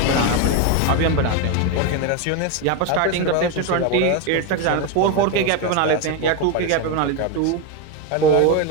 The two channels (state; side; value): different; both; correlation 0.03